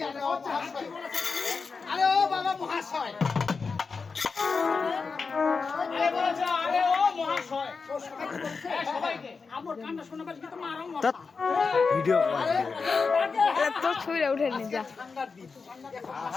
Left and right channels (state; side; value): quieter; right; 4.8 dB